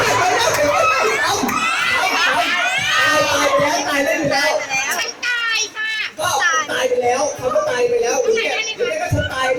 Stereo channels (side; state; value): both; identical; correlation 1.00